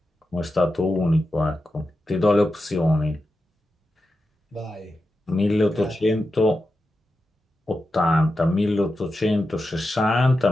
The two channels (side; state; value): both; normal; correlation 0.90